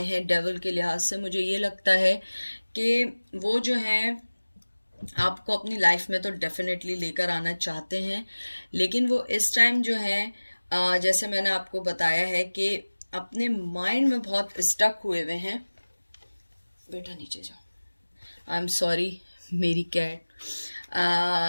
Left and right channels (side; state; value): both; inverted; correlation -1.00